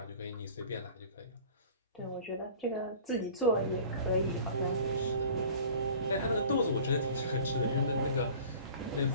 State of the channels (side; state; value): both; inverted; correlation -0.44